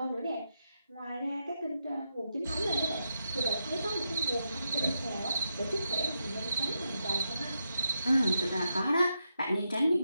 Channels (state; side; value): inverted; both; correlation -0.85